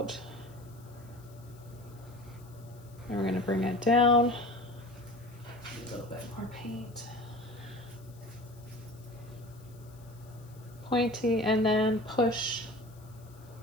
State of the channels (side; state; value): left; noise; hiss, 26 dB below the sound